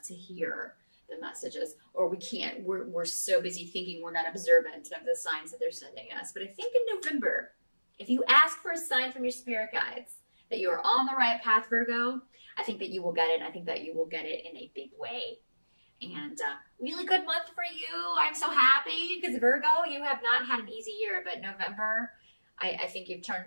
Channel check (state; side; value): inverted; both; correlation -1.00